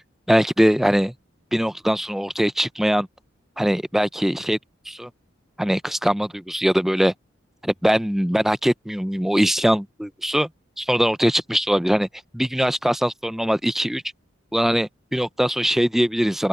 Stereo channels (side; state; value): both; normal; correlation 0.98